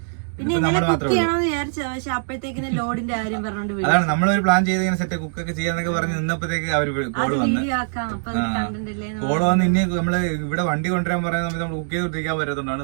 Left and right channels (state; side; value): silent; left; 64 dB below the other